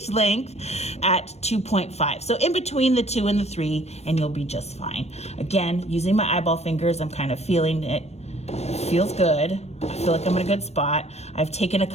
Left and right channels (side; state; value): right; late; 0.31 ms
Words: length at 2.5. So in between the 2 and the 3, and you'll be just fine. Again, using my eyeball fingers, I'm kind of feeling it. Feels good. I feel like I'm in a good spot. I've taken a